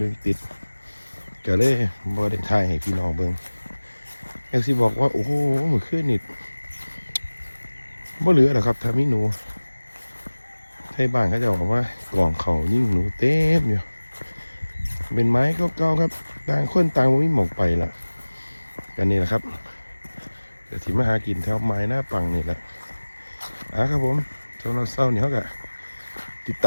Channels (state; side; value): inverted; both; correlation -1.00